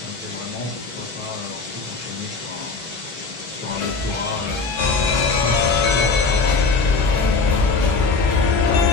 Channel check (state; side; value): quieter; right; 4.3 dB